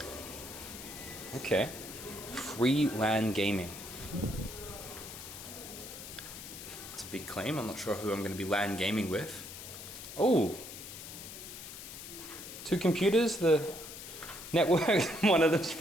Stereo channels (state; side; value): noise; left; hiss, 11 dB below the sound